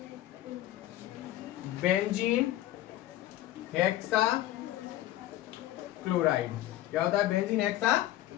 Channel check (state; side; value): quieter; right; 14.5 dB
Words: बेंजीन हेक्सा क्लोराइड। क्या होता है, बेंजीन हेक्सा